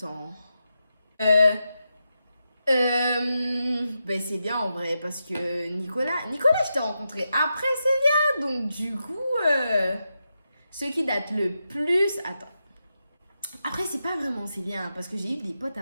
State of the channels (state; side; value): inverted; both; correlation -0.87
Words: Ben c'est bien en vrai, parce que Nicolas, je t'ai rencontré après Célia. Donc, du coup, ce qui date le plus... Attends. Après, c'est pas vraiment Célia, hein, parce que j'ai eu des potes